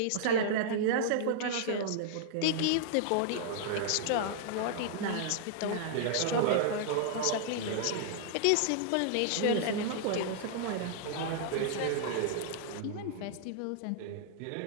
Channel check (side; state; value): both; different; correlation -0.01